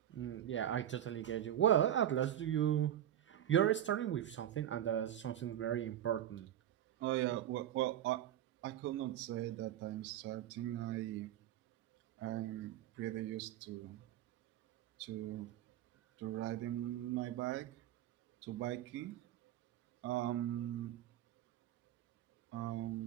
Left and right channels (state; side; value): quieter; left; 11.5 dB